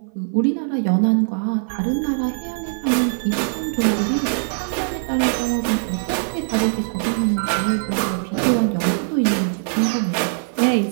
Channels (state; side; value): silent; left; 56 dB below the other